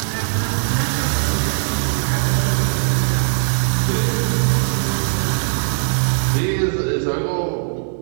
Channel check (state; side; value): silent; left; digital silence